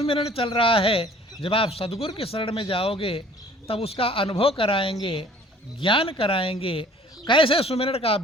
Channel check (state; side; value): normal; both; correlation 0.52